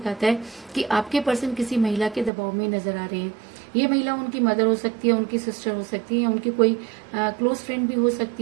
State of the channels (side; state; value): left; drops out; at 2.3 s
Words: है कि आपके पर्सन किसी महिला के दबाव में नजर आ रहे हैं। ये महिला उनकी मदर हो सकती है, उनकी सिस्टर हो सकती है, या उनकी कोई क्लोज फ्रेंड भी हो